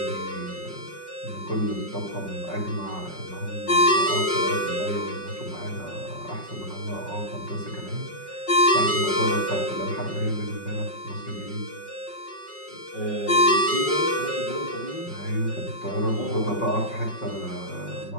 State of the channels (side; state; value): right; late; 5.4 ms